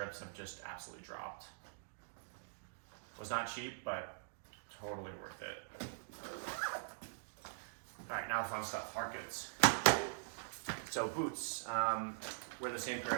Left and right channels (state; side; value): silent; left; digital silence